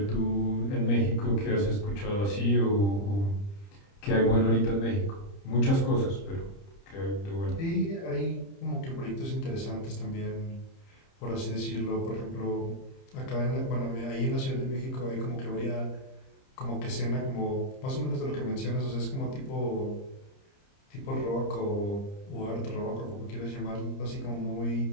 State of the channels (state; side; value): late; right; 30 ms